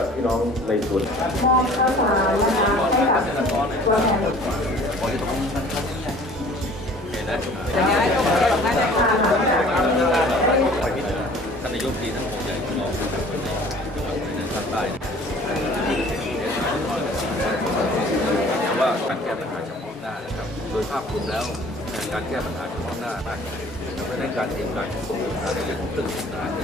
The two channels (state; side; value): normal; both; correlation 0.50